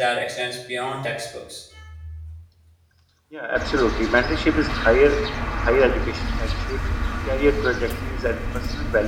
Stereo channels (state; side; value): identical; both; correlation 1.00